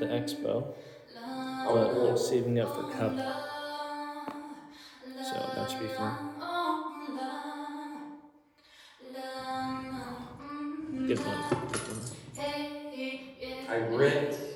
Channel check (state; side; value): identical; both; correlation 1.00